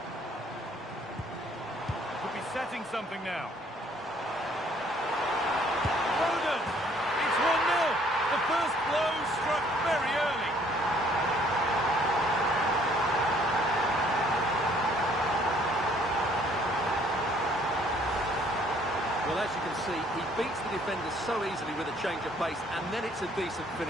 Could be setting something now. Foden! It's 1-0. The first blow struck very early. Well, as you can see, he beats the defenders so easily with a change of pace, and then it's a decent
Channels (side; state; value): both; normal; correlation 0.61